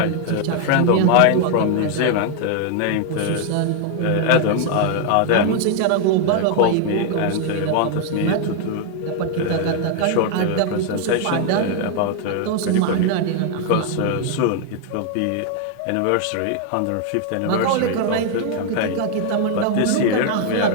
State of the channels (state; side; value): different; both; correlation 0.00